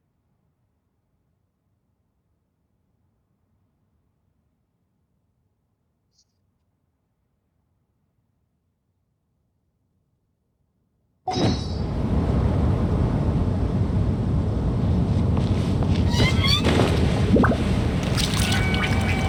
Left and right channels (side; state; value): both; identical; correlation 1.00